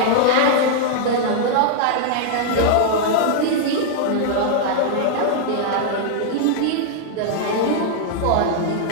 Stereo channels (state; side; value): different; both; correlation -0.01